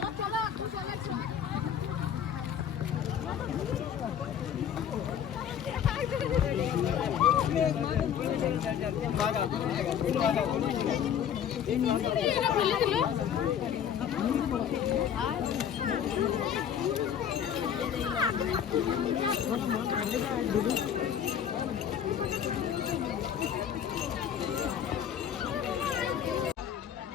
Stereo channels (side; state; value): right; quieter; 8.8 dB